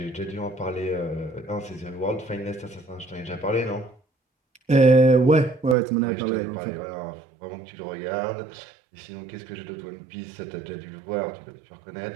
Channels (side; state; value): left; drops out; at 5.8 s